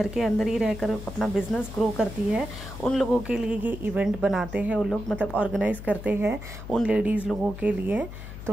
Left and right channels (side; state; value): left; noise; hum, 11 dB below the sound